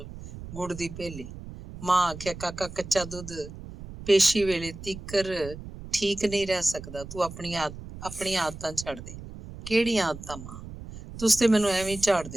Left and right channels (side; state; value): right; noise; rumble, 13 dB below the sound